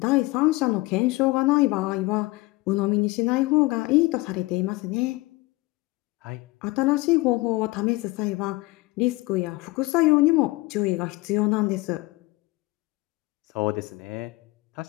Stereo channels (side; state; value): right; quieter; 21.7 dB